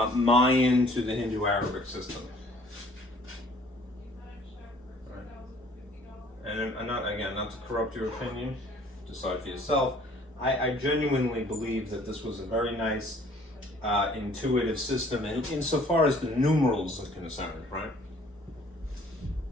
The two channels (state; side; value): normal; both; correlation 0.56